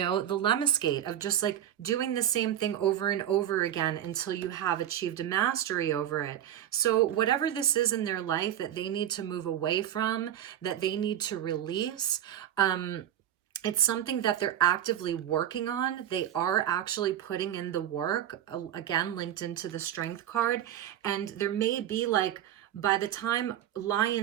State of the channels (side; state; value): left; quieter; 11.1 dB